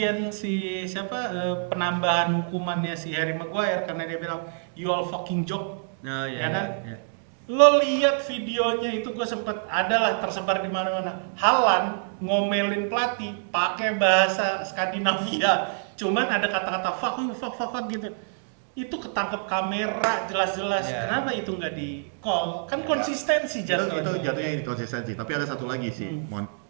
si siapa penambahan hukumannya si Harry Maguire karena dia bilang you all fucking joke. Nah, Ya kan? ya. Lo lihat videonya itu gue sempet adalah tersebar di mana-mana. Haaland ngomelin pelatih pakai bahasa Skandinavia. Cuman ada kata-kata fuck you, fuck gitu. Itu ketangkep kamera jelas-jelas. Yeah. Kenapa itu nggak di call? Kan konsistensi Itu jatuhnya. jatuhnya inkonsistensi. Tapi ada satu lagi sih, Mon.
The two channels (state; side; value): silent; left; digital silence